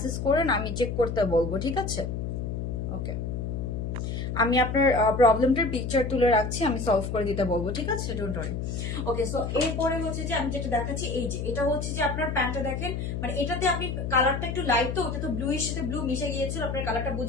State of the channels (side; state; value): left; noise; hum, 3 dB below the sound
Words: করেন, আমি চেক করতে বলবো, ঠিক আছে? ওকে, আমি আপনার প্রবলেমটার পিকচার তুলে রাখছি, আমি সলভ করে দিতে বলবো, ঠিক আছে? Don't worry. ওকে, সো এরপরে হচ্ছে যে আমি যেটা দেখাচ্ছি, এই যে এটা হচ্ছে যে আপনার প্যান্টটা দেখেন, মানে এটাতে আপনি কালারটা একটু লাইট, তো ওটা তো ব্লু এর সাথে ব্লু মিশে গিয়েছিল, আপনার কালারটা